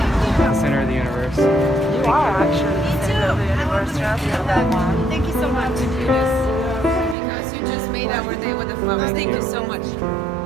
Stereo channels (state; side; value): drops out; left; at 7.2 s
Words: The center of the universe. You are actually the center of the universe. Thank you so much. Because you just made our day with the flowers. Thank you so much. It